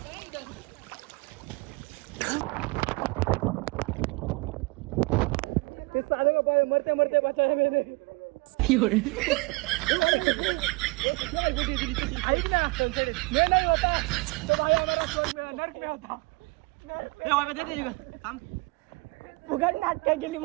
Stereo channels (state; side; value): quieter; left; 26.0 dB